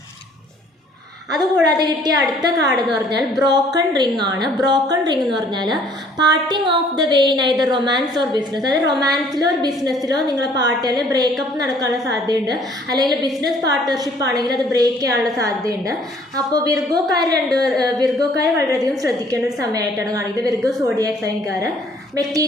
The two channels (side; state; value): both; normal; correlation 0.59